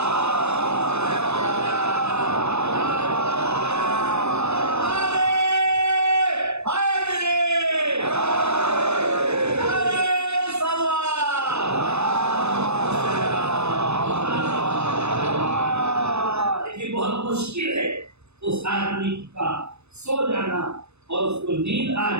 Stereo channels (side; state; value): left; late; 0.81 ms